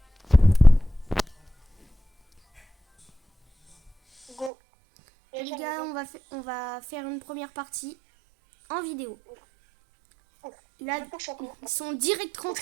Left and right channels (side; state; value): left; drops out; at 4.5 s